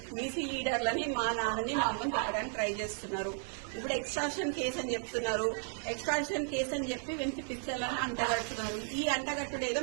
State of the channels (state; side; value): silent; left; 55 dB below the other